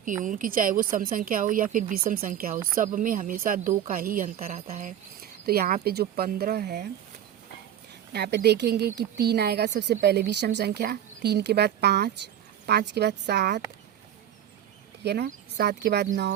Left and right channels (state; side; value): quieter; left; 10.5 dB